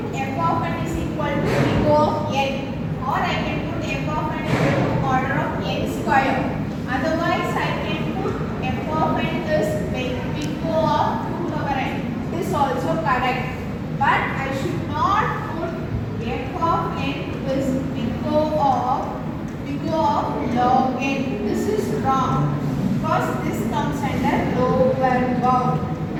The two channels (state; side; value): identical; both; correlation 1.00